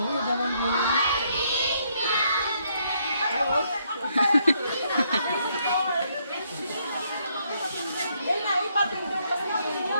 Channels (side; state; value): both; inverted; correlation -0.72